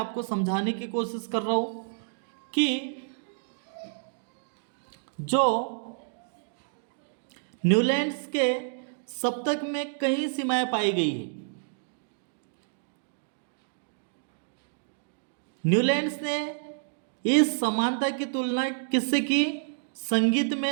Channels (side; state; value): left; silent; digital silence